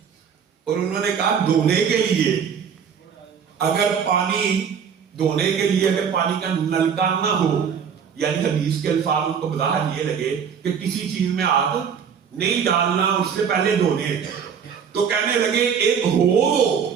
اور انہوں نے کہا دھونے کے لیے اگر پانی دھونے کے لیے اگر پانی کا نلکا نہ ہو، یعنی حدیث کے الفاظ ان کو بظاہر یہ لگے کہ کسی چیز میں ہاتھ نہیں ڈالنا، اس سے پہلے دھونے، تو کہنے لگے ایک ہو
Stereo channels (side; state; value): left; quieter; 7.2 dB